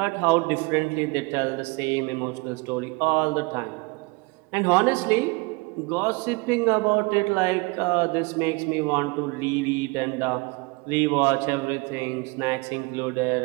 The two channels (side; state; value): left; quieter; 26.8 dB